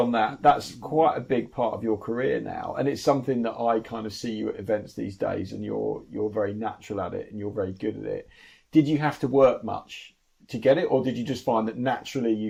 that. That's quite a big part of your career now, and it's something that I kind of see you at events these days, and you're very natural at it, and you're very good at it. Did you have to work much to get it, or did you just find that naturally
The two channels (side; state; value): both; identical; correlation 1.00